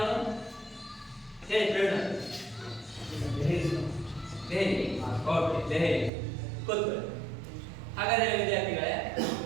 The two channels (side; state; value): left; drops out; at 6.1 s